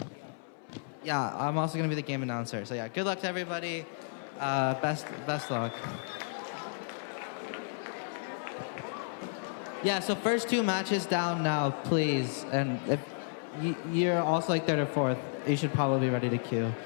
Yeah, I'm also gonna be the game announcer. So yeah, good luck to everybody. Best luck. Yeah, so first two matches down now, please. And if you're also like third or fourth, you should probably be ready to queue.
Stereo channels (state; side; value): silent; right; 56 dB below the other